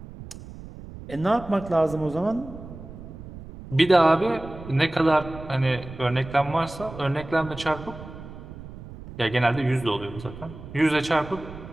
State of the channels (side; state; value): right; noise; rumble, 14 dB below the sound